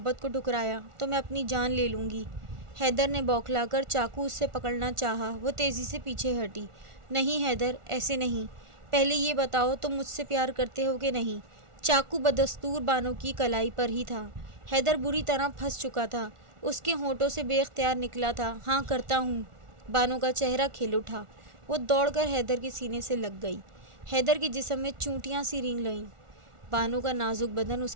کو ٹھکرایا تو میں اپنی جان لے لوں گی۔ حیدر نے بوکھلا کر چاقو اس سے پکڑنا چاہا۔ وہ تیزی سے پیچھے ہٹی۔ نہیں حیدر، ایسے نہیں، پہلے یہ بتاؤ تم مجھ سے پیار کرتے ہو کہ نہیں؟ چاقو بدستور بانو کی کلائی پر ہی تھا۔ حیدر بری طرح پھنس چکا تھا۔ اس کے ہونٹوں سے بے اختیار نکلا تھا، ہاں کرتا ہوں۔ بانو کا چہرہ کھل اٹھا۔ وہ دوڑ کر حیدر کے سینے سے لگ گئی۔ حیدر کے جسم میں چونٹیاں سی رینگ لئیں۔ بانو کا نازک بدن اس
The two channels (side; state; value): left; late; 1.4 ms